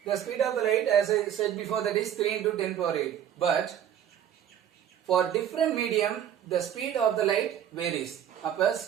the speed of the light, as I said before, that is 3 into 10 power 8. But for different medium, the speed of the light varies. அப்ப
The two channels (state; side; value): quieter; left; 9.9 dB